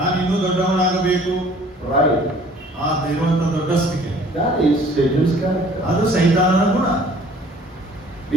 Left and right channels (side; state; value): both; normal; correlation 0.53